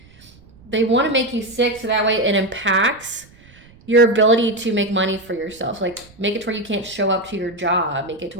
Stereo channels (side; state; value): right; noise; rumble, 26 dB below the sound